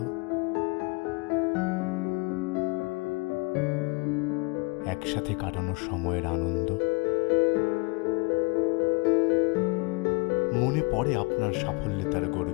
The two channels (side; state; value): right; quieter; 26.7 dB